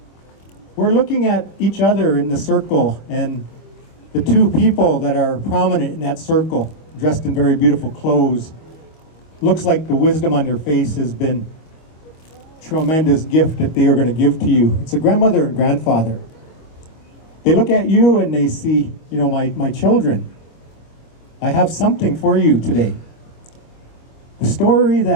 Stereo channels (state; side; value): late; right; 25 ms